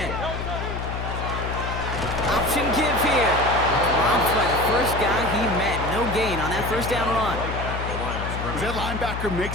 Option give here. Dropped by the first guy he met. No gain on that 1st down run. As that linebacker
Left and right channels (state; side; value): noise; left; hum, 5 dB below the sound